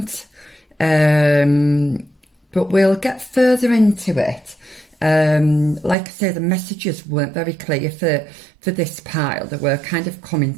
but we'll get further into it. Like I say, the messages weren't very clear for this pile. They were kind of coming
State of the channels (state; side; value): drops out; left; at 6.0 s